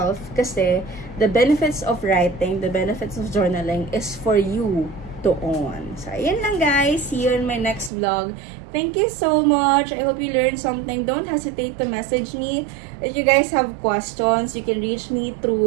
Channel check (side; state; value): left; drops out; at 7.9 s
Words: kasi the benefits of writing, the benefits of journaling is for you to own. So, ayan lang guys. See you in my next vlog. Thank you so much. I hope you learned something. Don't hesitate to message me. If you guys have questions, you can reach me